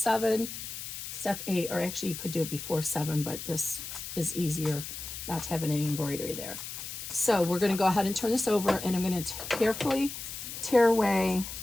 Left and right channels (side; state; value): left; noise; hiss, 8 dB below the sound